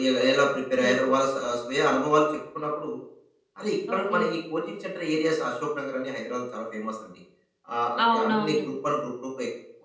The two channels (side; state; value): both; identical; correlation 1.00